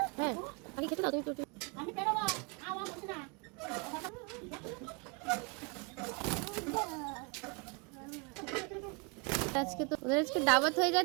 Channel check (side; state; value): left; quieter; 32.6 dB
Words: হ্যাঁ বাকি খেতে দাও। তুমি আমি বেরোবো, খাওয়া হচ্ছে না। আজকে তো ওদের আজকে দাওয়াত হয়ে